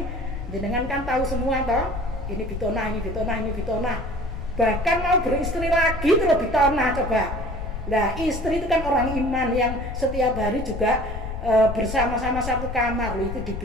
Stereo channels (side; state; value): left; noise; rumble, 6 dB below the sound